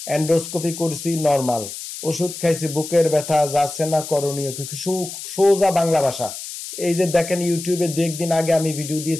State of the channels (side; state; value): left; noise; hiss, 10 dB below the sound